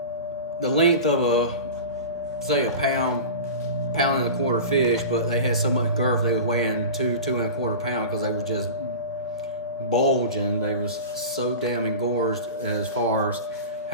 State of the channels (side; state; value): both; inverted; correlation -0.31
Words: length of say a pound and a quarter fish, but they had so much girth they were weighing 2 and a quarter pounds because they were just bulging. They was so damn engorged as far as